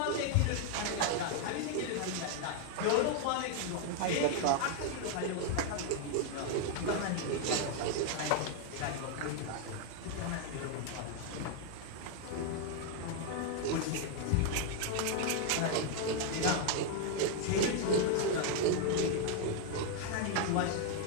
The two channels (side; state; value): both; different; correlation 0.00